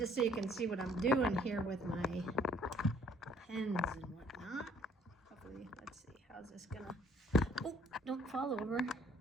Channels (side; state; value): both; normal; correlation 0.60